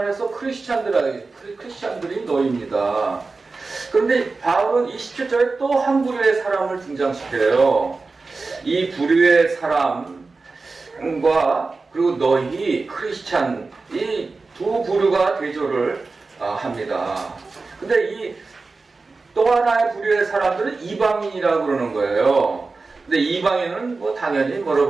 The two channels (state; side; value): quieter; left; 3.9 dB